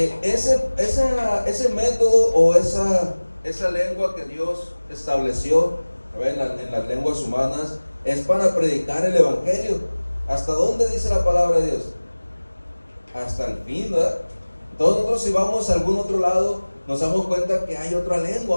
método o esa lengua que Dios estableció en las lenguas humanas es para predicar el evangelio. ¿Hasta dónde dice la palabra de Dios? Hasta el fin, ¿verdad? Entonces nosotros, si vamos a algún otro lado, nos damos cuenta que hay otra lengua,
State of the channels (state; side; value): inverted; both; correlation -1.00